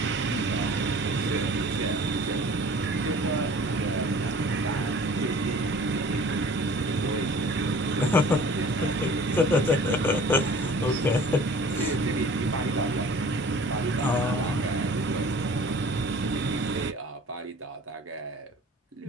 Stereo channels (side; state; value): both; normal; correlation 0.46